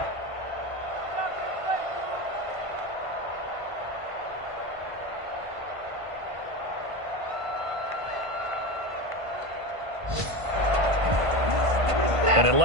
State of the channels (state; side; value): late; left; 1.5 ms